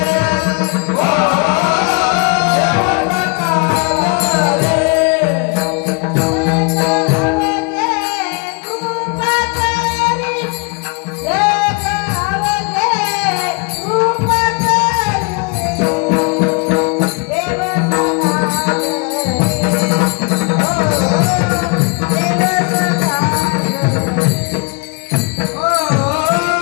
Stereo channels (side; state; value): right; quieter; 32.5 dB